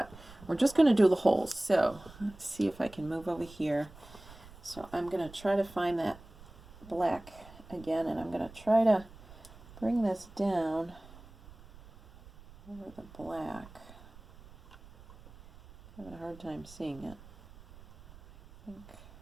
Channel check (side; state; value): right; noise; rumble, 20 dB below the sound